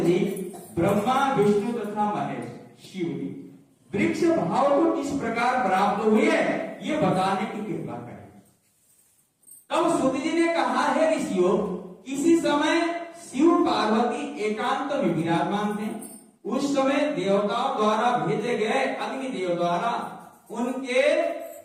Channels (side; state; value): both; identical; correlation 1.00